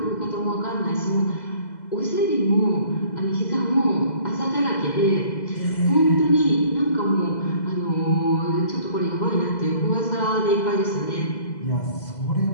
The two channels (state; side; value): late; right; 2.0 ms